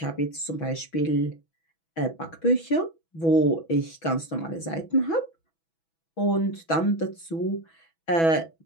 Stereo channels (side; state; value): right; late; 6.1 ms